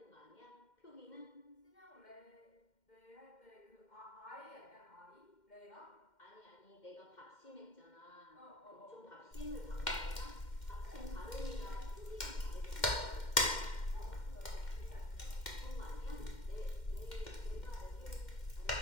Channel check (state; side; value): late; right; 2.1 ms